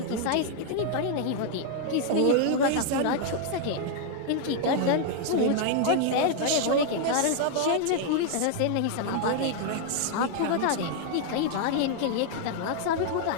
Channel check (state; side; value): different; both; correlation 0.00